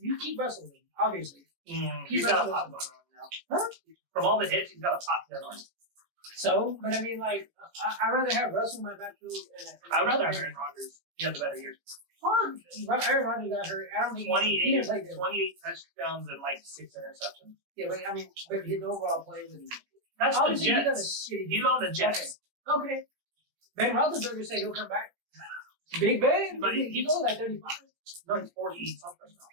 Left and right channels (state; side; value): late; left; 18 ms